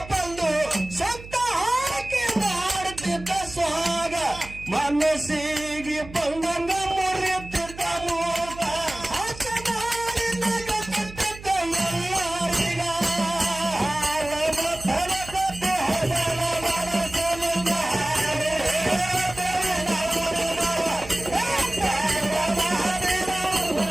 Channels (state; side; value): noise; right; hum, 15 dB below the sound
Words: ಬಂದು ಸತ್ತ ಹಾಕಿ ಮಾಡುತ್ತಿದ್ದ ಸ್ವಾಗ, ಮನಸ್ಸಿಗೆ ಬಂದಂಗ ಮುರಿಯುತ್ತಿದ್ದ ಮೂಗ, ಆಟ ಮಾಡಿ ನಗುತ್ತಿದ್ದ ಎಲ್ಲರಿಗ.